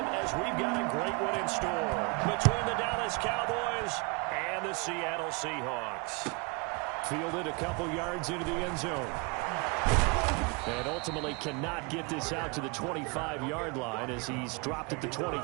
as we've got a great one in store between the Dallas Cowboys and the Seattle Seahawks. Fielded a couple yards into the end zone. And ultimately cannot get this out to the 25-yard line as he's dropped at the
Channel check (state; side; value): quieter; left; 31.0 dB